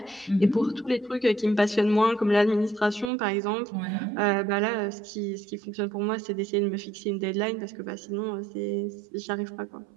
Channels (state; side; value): drops out; left; at 3.1 s